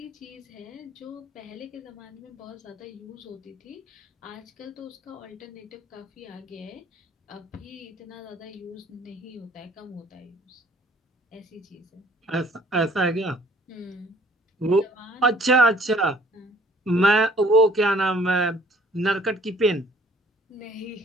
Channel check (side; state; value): both; normal; correlation 0.58